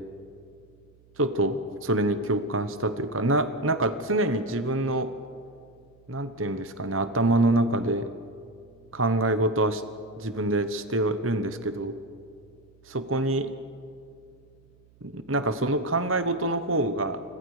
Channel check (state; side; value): noise; right; hum, 29 dB below the sound